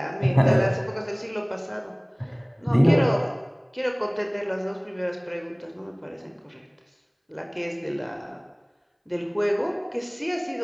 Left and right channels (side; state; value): both; identical; correlation 1.00